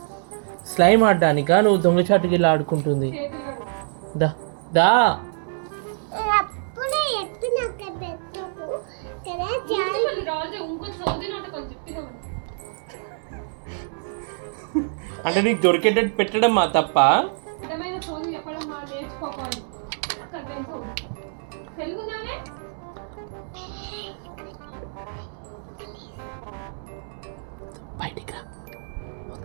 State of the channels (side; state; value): left; silent; 62 dB below the other